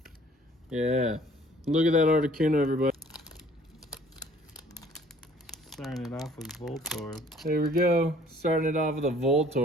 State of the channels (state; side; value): normal; both; correlation 0.55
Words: Yeah. Look at that Articuno, everybody. Starting it off with Voltorb. There we go. Starting it off with a